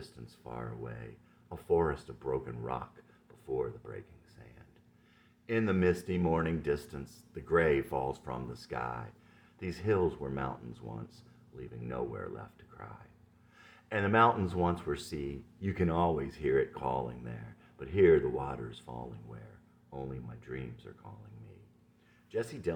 far away, a forest of broken rock before the breaking sand. In the misty morning distance, the gray falls from the sky. These hills were mountains once, leaving nowhere left to cry. And the mountains once were sea, you can always hear it calling there, but here the water's falling where only my dreams are calling me. Jesse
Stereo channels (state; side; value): identical; both; correlation 1.00